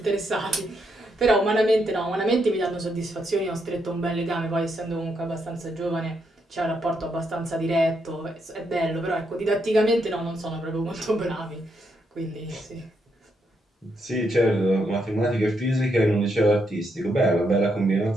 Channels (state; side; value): normal; both; correlation 0.79